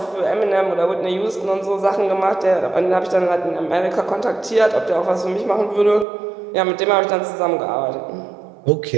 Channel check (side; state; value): left; drops out; at 6.1 s